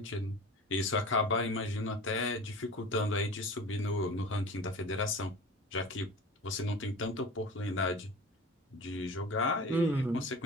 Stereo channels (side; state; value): both; normal; correlation 0.37